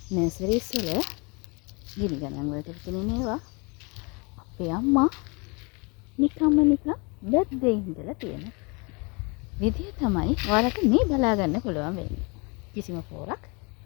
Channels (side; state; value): right; quieter; 30.4 dB